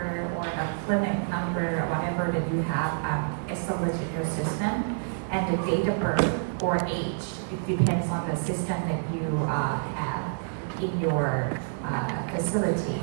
or the clinic number, or whatever that you have established in your system, and the date of birth or age. It depends on the system that you have in your facility.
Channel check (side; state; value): left; silent; digital silence